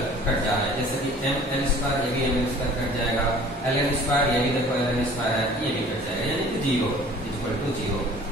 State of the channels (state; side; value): normal; both; correlation 0.48